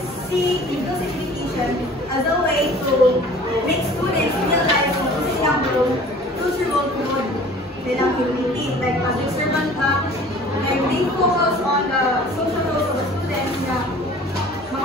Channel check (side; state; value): both; normal; correlation 0.47